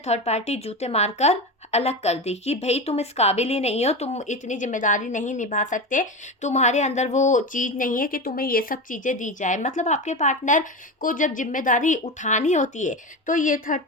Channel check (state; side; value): normal; both; correlation 0.23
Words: पार्टी जूते मारकर अलग कर दी कि भाई तुम इस काबिल ही नहीं हो, तुम इतनी जिम्मेदारी नहीं निभा सकते, तुम्हारे अंदर वो चीज़ नहीं है कि तुम्हें ये सब चीज़ें दी जाए। मतलब आपके पार्टनर को जब जिम्मेदारी उठानी होती है तो ये थर्ड